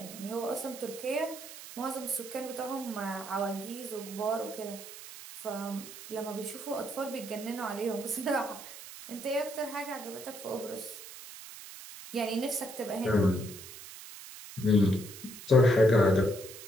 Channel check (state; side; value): noise; right; hiss, 14 dB below the sound